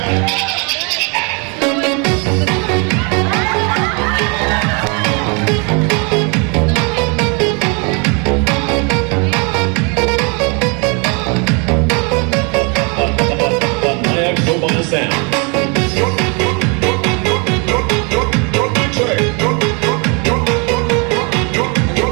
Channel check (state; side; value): quieter; left; 33.3 dB